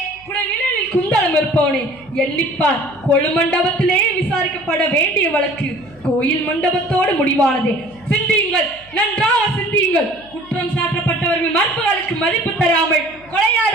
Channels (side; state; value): right; noise; hum, 27 dB below the sound